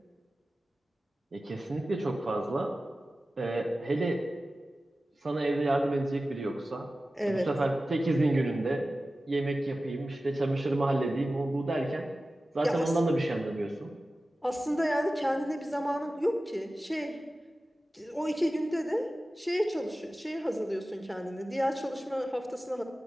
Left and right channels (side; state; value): both; normal; correlation 0.95